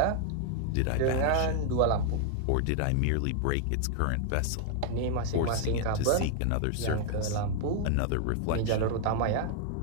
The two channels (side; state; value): both; different; correlation 0.00